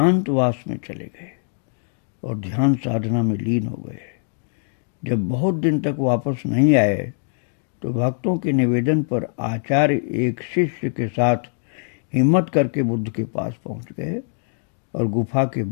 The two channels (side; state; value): right; silent; digital silence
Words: में चले गए और ध्यान साधना में लीन हो गए। जब बहुत दिन तक वापस नहीं आए तो भक्तों के निवेदन पर आचार्य एक शिष्य के साथ हिम्मत करके बुद्ध के पास पहुंच गए और गुफा के